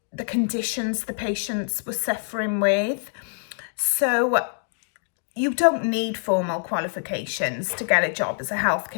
the conditions the patients were suffering with. So you don't need formal qualifications to get a job as a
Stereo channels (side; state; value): right; silent; digital silence